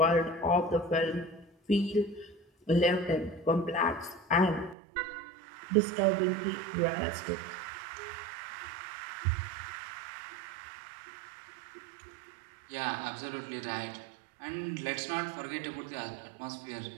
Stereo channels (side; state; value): left; drops out; at 4.8 s